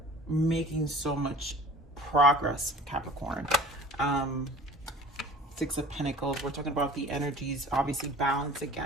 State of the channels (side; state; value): both; normal; correlation 0.44